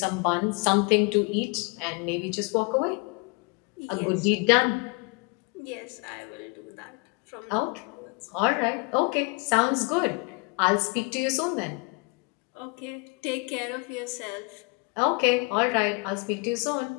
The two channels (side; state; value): right; quieter; 31.4 dB